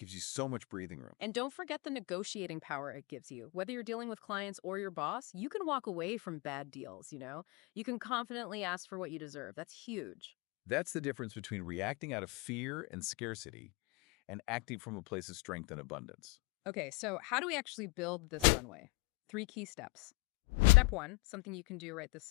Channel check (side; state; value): right; quieter; 25.1 dB